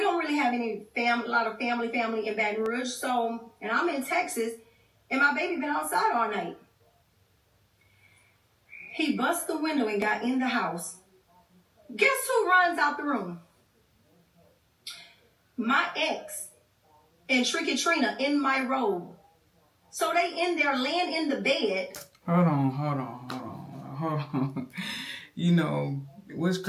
don't really have a lot of family in Baton Rouge. So, and I'm in Texas and my baby been outside all night. He bust the window and got in the house. Guess who runs out the room? My ex and Tricky Trina in my robe. So they in there laying in the bed. Hold on. You know, what's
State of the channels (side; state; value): both; identical; correlation 1.00